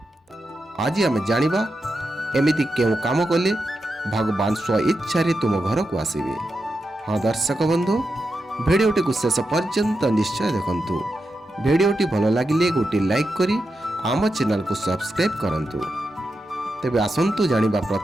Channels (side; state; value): both; normal; correlation 0.88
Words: आज आम जानिबा एमिति केउ काम कले भगवान स्व इच्छा तुम घर को आसबे। हाँ दर्शक बंधु, भिडियोटी को शेष पर्यंत निश्चय देखंतु। भिडियोटी भल लगिले गोटे लाइक करी आम चैनल को सब्सक्राइब करंतु। तेबे आसंतु जानिबा